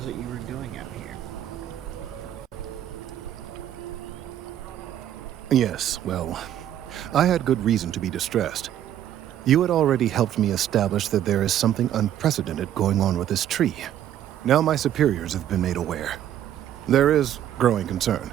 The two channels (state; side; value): quieter; left; 11.3 dB